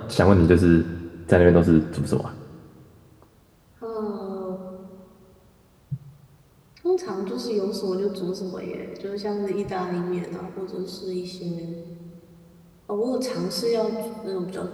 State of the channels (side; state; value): both; identical; correlation 1.00